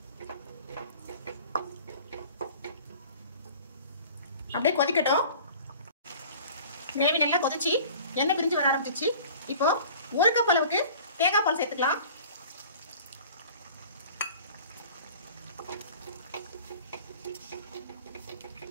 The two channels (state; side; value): inverted; both; correlation -0.45